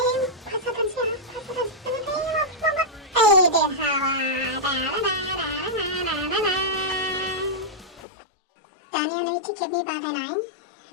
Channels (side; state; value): right; drops out; at 8.0 s